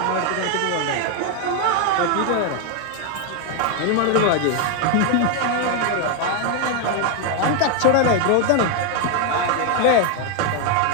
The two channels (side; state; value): both; different; correlation 0.01